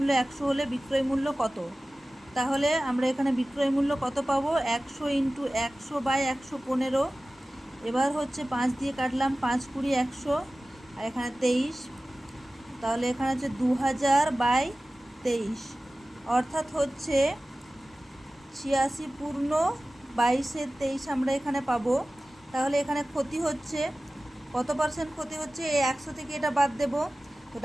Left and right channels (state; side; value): normal; both; correlation 0.97